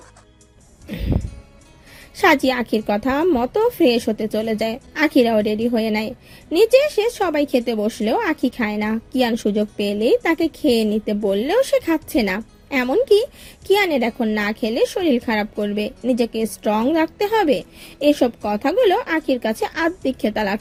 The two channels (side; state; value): both; identical; correlation 1.00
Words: সাজি আখির কথা মতো ফ্রেশ হতে চলে যায়। আখিরাও রেডি হয়ে নেয়। নিচে এসে সবাই খেতে বসলেও আখি খায় না। কিয়ান সুযোগ পেলেই তাকে খেয়ে নিতে বললেও সে খাচ্ছে না। এমনকি কিয়ানের এখন না খেলে শরীর খারাপ করবে, নিজেকে স্ট্রং রাখতে হবে, এসব কথাগুলো আখির কাছে আত্মিক খেতা